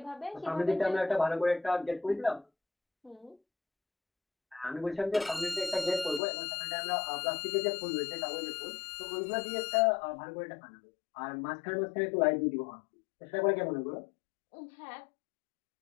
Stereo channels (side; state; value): right; drops out; at 6.2 s